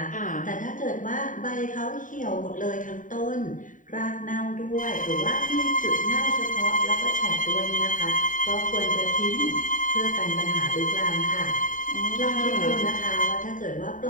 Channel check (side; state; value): right; late; 0.38 ms